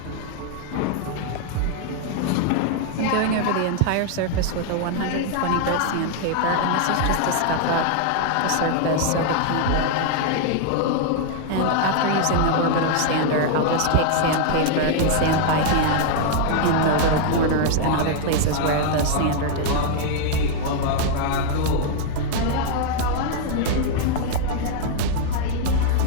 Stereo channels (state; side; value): different; both; correlation 0.00